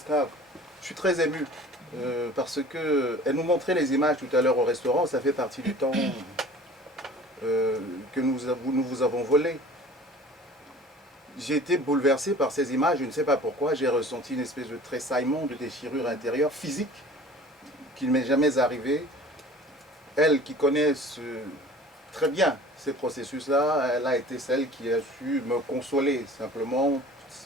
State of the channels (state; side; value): normal; both; correlation 0.45